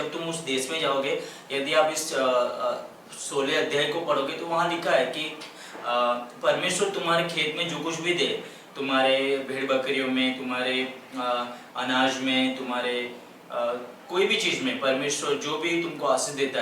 तुम उस देश में जाओगे, यदि आप इस 16 अध्याय को पढ़ोगे तो वहाँ लिखा है कि परमेश्वर तुम्हारे खेत में जो कुछ भी दे, तुम्हारे भेड़ बकरियों में, तुम्हारे अनाज में, तुम्हारे कोई भी चीज़ में परमेश्वर जो भी तुमको आशीष देता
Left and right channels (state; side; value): identical; both; correlation 1.00